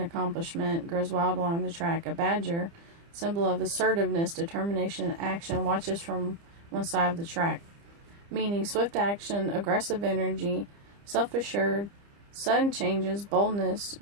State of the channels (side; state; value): left; late; 30 ms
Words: grows wild along the track. A badger, symbol of assertiveness, determination, and action, watches from one side of the track, meaning swift action, aggressive energy, self-assured, sudden changes, boldness,